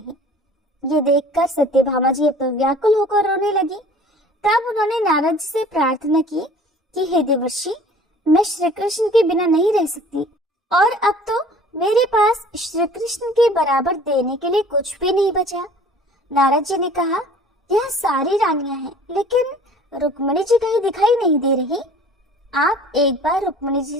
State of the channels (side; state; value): both; normal; correlation 0.48